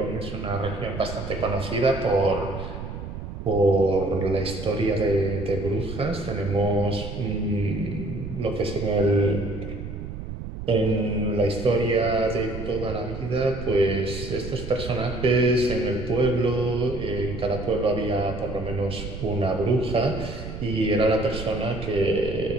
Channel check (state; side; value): noise; right; rumble, 8 dB below the sound